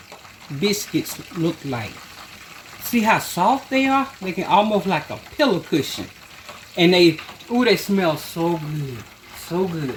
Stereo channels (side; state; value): both; identical; correlation 1.00